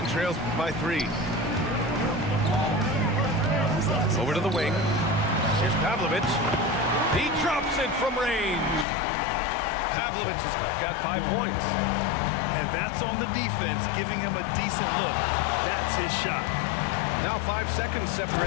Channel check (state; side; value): drops out; right; at 8.8 s